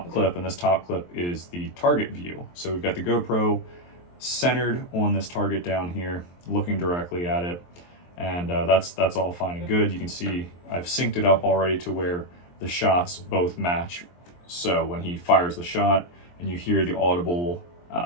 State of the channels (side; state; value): right; late; 23 ms